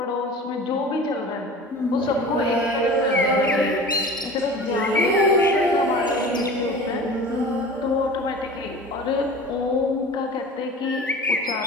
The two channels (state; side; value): normal; both; correlation 0.38